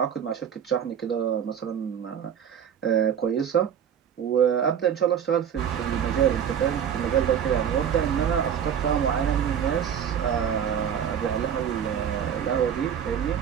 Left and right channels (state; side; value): quieter; left; 8.5 dB